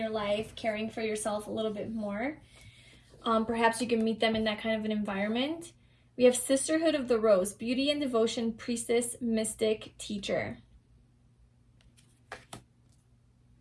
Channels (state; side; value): identical; both; correlation 1.00